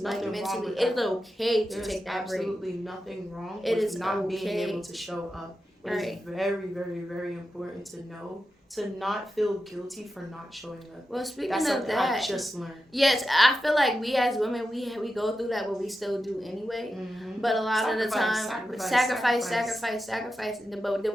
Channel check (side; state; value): both; normal; correlation 0.90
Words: mentally wrong with it's okay to take that break. There's absolutely nothing wrong with not being able to show up. It is very, very, very important to know, to not feel guilty for not showing up. Well, speaking of that, I just learned. Yes, I feel like we as women, we go through that, but we still do anyway. Mm-hmm. But a lot of the time, sacrifice. But